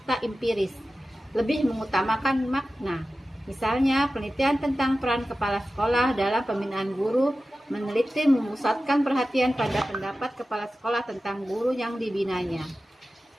empiris. Lebih mengutamakan makna. Misalnya, penelitian tentang peran kepala sekolah dalam pembinaan guru meneliti memusatkan perhatian pada pendapat kepala sekolah tentang guru yang dibinanya.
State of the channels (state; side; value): normal; both; correlation 0.95